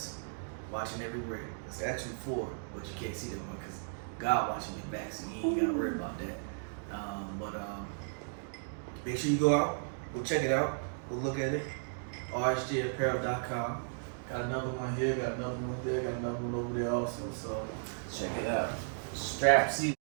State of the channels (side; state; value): left; silent; digital silence